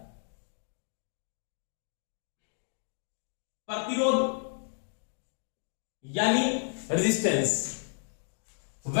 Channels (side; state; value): right; silent; digital silence